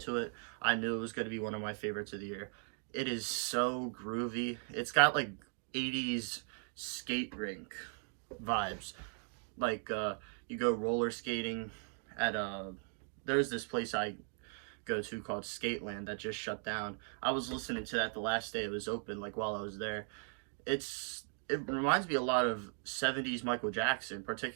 to it, I knew it was going to be one of my favorites of the year. It is so groovy. It's got like 80s skate rink vibes. Like you go roller skating at there's this place I go to called Skateland that just shut down. I was listening to that the last day it was open, like while I was there. It reminds me a lot of 70s Michael Jackson,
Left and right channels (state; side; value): silent; left; 52 dB below the other